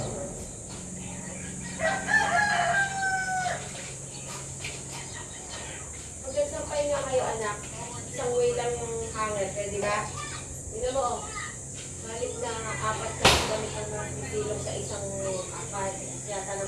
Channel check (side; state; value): both; identical; correlation 1.00